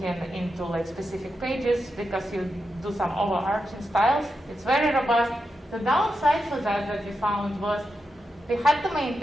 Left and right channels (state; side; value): normal; both; correlation 0.88